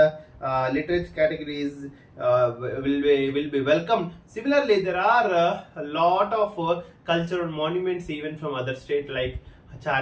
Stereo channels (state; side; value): identical; both; correlation 1.00